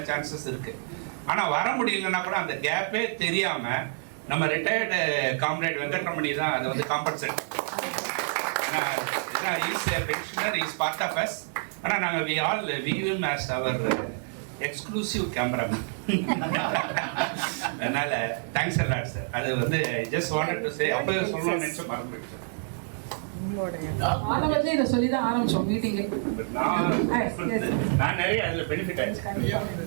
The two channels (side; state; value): left; silent; digital silence